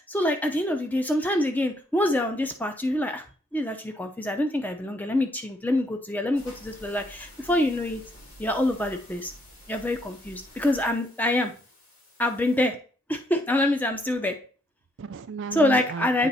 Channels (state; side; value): normal; both; correlation 0.71